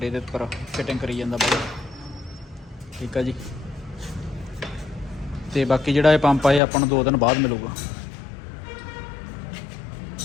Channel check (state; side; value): drops out; right; at 6.6 s